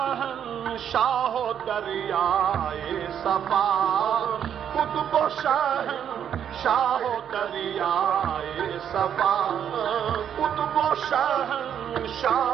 و دریائے صفا قطب و شاہ و دریائے صفا قطب و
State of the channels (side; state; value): left; quieter; 8.9 dB